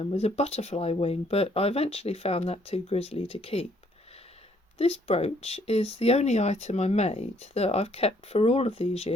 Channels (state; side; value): normal; both; correlation 0.66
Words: was a butterfly wing, but I eventually found that too grisly to keep. This brooch is the only item I made that I've kept for all of these